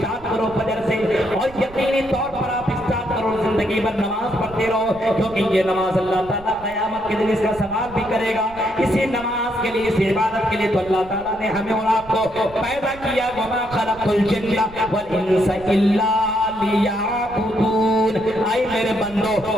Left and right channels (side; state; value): right; noise; rumble, 19 dB below the sound